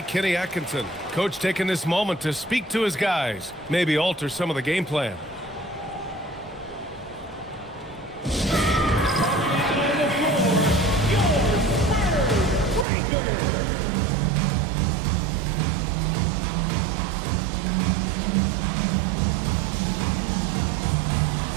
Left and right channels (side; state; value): left; drops out; at 12.9 s